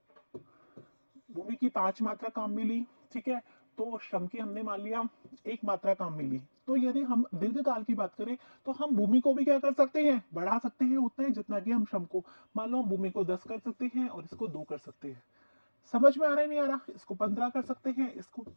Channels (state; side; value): inverted; both; correlation -1.00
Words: की 5 मात्रा काम मिली, ठीक है, तो श्रम की हमने मान लिया 1 मात्रा काम मिली। तो यदि हम दीर्घकाल की बात करें तो हम भूमि को भी क्या कर सकते हैं, बढ़ा सकते हैं उतना ही जितना कि हम श्रम को, मान लो हम भूमि को 10 कर सकते हैं और इसको 2 कर सकते हैं। समझ में आ रहा है, नहीं आ रहा, इसको 15 कर सकते हैं, इसको